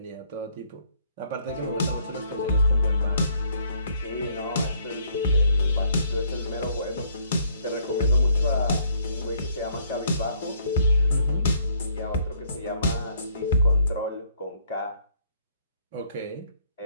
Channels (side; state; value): both; inverted; correlation -0.66